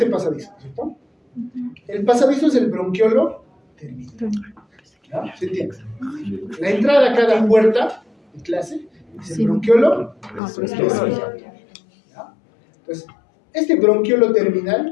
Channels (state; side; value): drops out; right; at 10.4 s